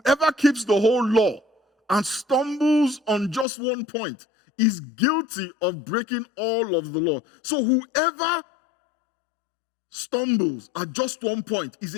keeps the whole law and stumbles on just one point is guilty of breaking all of the law. So whoever stumbles at just one point is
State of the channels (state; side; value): drops out; right; at 3.5 s